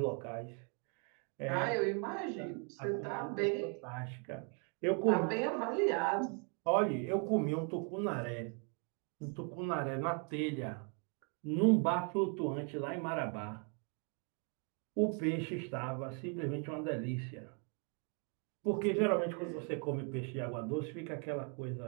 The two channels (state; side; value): quieter; left; 39.0 dB